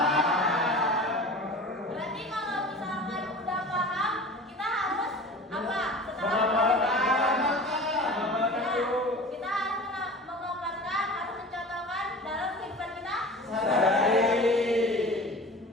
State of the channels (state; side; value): normal; both; correlation 0.38